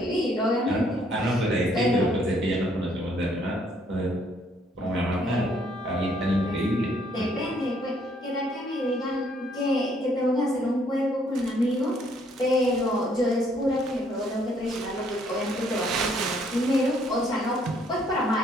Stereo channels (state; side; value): normal; both; correlation 0.66